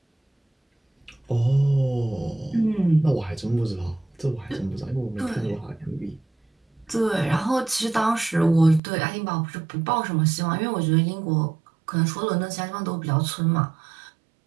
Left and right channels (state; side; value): drops out; left; at 8.8 s